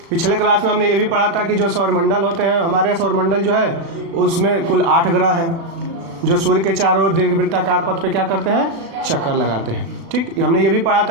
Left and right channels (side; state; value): left; late; 36 ms